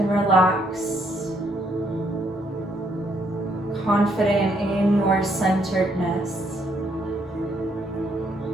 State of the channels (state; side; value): normal; both; correlation 0.71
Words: relax. Confident in your centeredness.